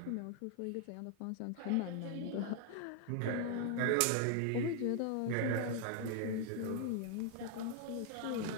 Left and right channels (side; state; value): both; different; correlation 0.00